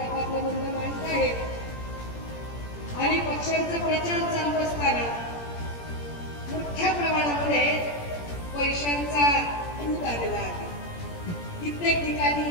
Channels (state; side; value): late; right; 17 ms